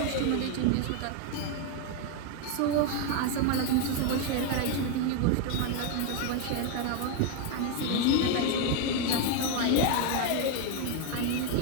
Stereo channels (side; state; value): both; different; correlation 0.01